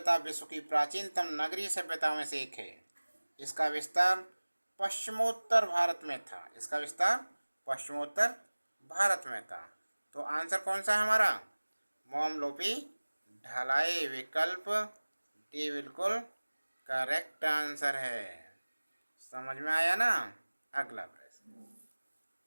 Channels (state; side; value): inverted; both; correlation -1.00